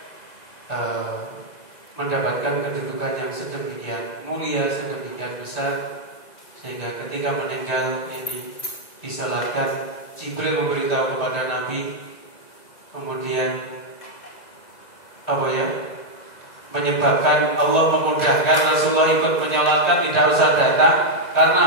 mendapatkan kedudukan yang sedemikian mulia, sedemikian besar, sehingga ketika meninggal ini disalatkan, Jibril memberitahu kepada Nabi, kemudian menyebabkan Allah memudahkan Rasulullah ikut menyolatkan, tidak usah datang.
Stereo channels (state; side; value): late; right; 2.0 ms